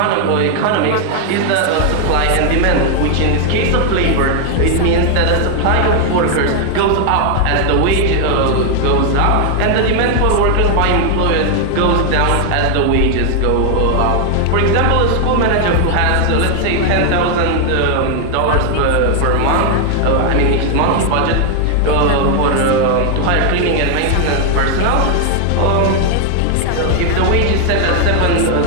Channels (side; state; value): both; different; correlation 0.00